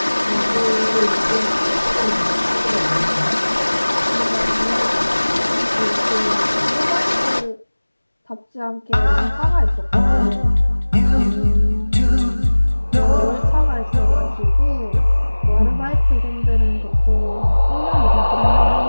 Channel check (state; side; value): inverted; both; correlation -1.00